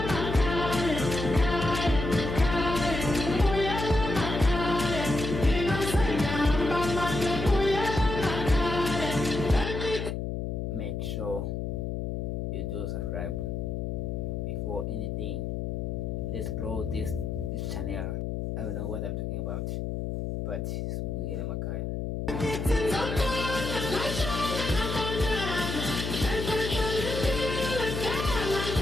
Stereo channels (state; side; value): noise; left; hum, 3 dB below the sound